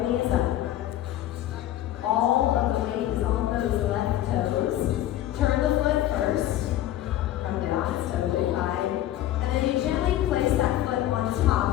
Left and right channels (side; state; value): right; quieter; 13.3 dB